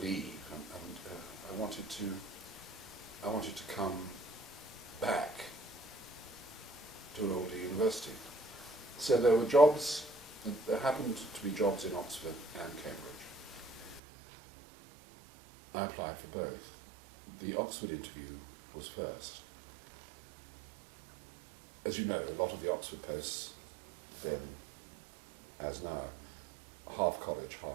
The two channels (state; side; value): drops out; left; at 14.0 s